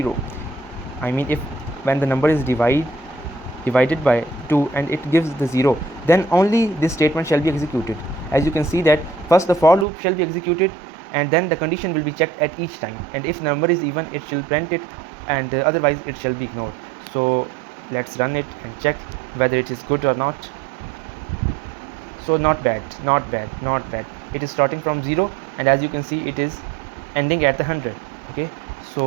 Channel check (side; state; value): left; drops out; at 9.9 s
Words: I mean if when the number is divided by 2 and it gives the 0, then only this statement shall be executed. As you can see that first the for loop shall be executed, and then the condition will be checked at each time, and if number is even, it shall print it, and otherwise it shall be ignored. So let's run it and check whether it is good or not. So not bad. It is starting from 0, and as you can see it is ending at the 100. okay,